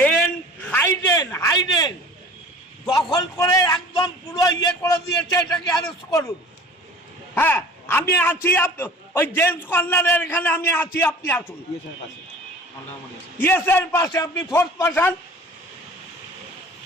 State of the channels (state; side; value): normal; both; correlation 0.43